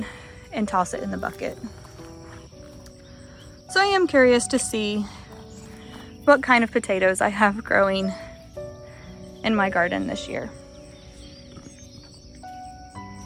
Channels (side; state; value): both; identical; correlation 1.00